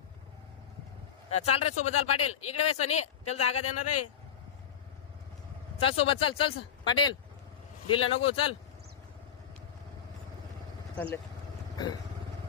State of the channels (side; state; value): right; quieter; 8.6 dB